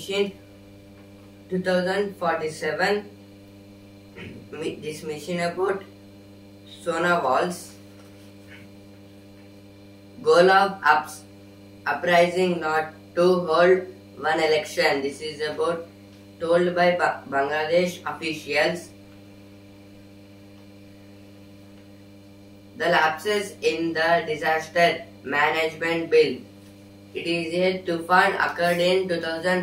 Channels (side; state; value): both; identical; correlation 1.00